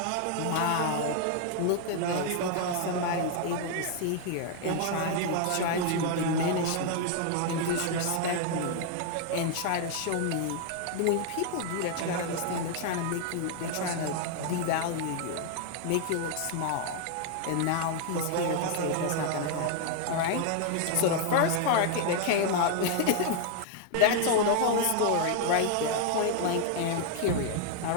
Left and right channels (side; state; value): both; different; correlation 0.00